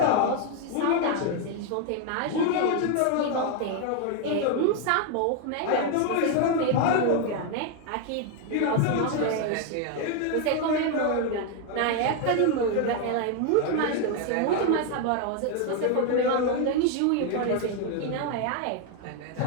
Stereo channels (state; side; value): different; both; correlation 0.01